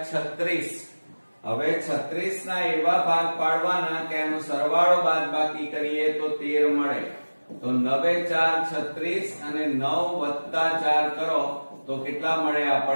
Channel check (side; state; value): both; inverted; correlation -1.00